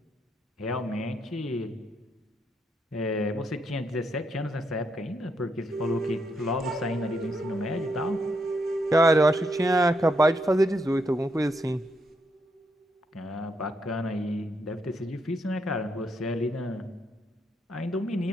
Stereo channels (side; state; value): both; normal; correlation 0.78